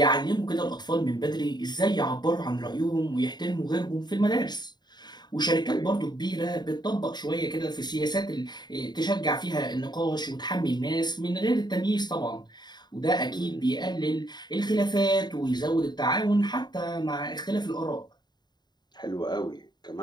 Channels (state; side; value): late; right; 0.21 ms